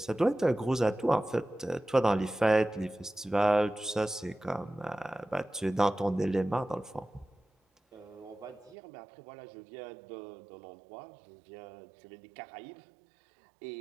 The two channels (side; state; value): left; drops out; at 8.8 s